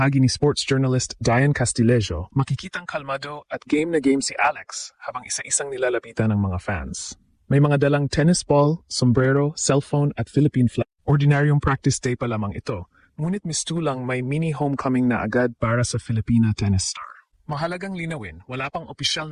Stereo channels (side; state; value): both; identical; correlation 1.00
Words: ni sports journalist Diane Castillejo, makikitang kalmado at game na game si Alex habang isa-isang nilalapitan ng mga fans. May mga dalang tennis ball, sombrero, cellphone at Philippine flag. Ordinaryong practice day pa lamang ito, ngunit mistulang may mini homecoming na agad para sa Filipina tennis star. Mahalagang linawin, wala pang opisyal